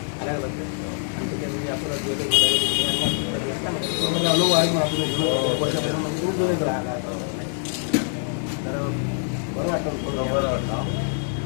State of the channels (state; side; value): silent; right; 62 dB below the other